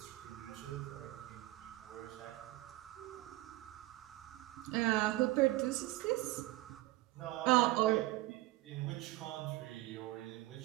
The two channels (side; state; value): left; quieter; 18.3 dB